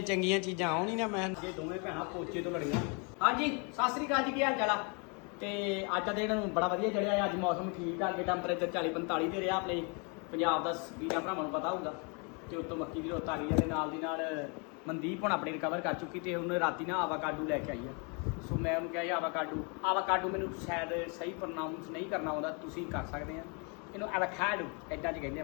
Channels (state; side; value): quieter; right; 34.3 dB